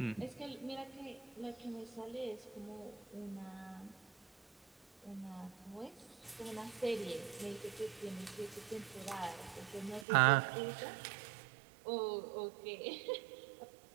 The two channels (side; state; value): left; drops out; at 10.1 s